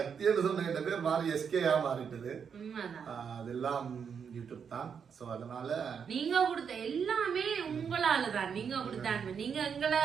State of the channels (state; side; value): quieter; left; 6.9 dB